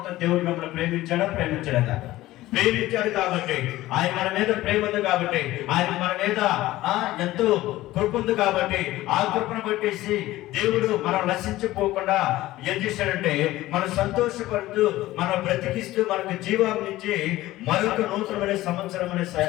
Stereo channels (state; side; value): quieter; right; 16.5 dB